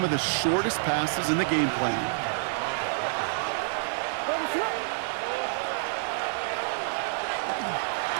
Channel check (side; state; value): left; silent; 59 dB below the other